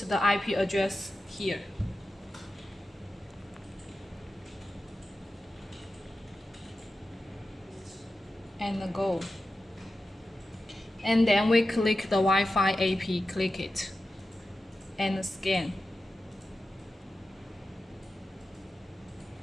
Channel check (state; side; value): normal; both; correlation 0.92